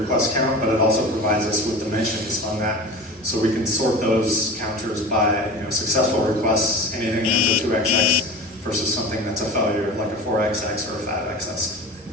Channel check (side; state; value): both; normal; correlation 0.33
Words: count, but it also provides us with dimensions on that. So we can sort those counters by successful requests, anything that's a 2xx versus something that's a failure like a 4xx or a 5xx.